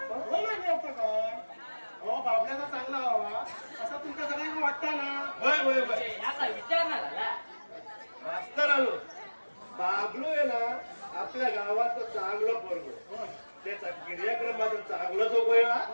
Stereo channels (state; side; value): inverted; both; correlation -1.00